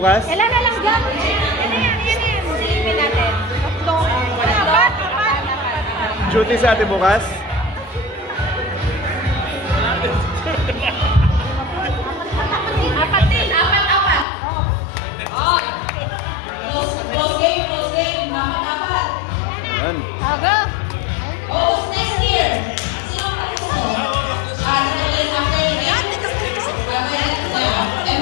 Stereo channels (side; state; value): right; drops out; at 14.2 s